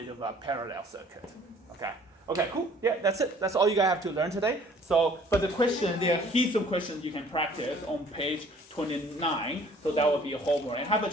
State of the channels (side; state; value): both; normal; correlation 0.55